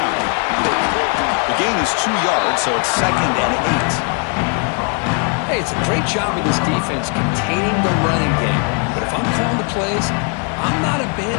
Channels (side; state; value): right; quieter; 37.9 dB